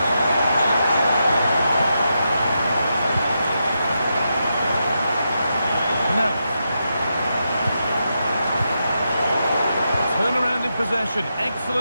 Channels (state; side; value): inverted; both; correlation -0.85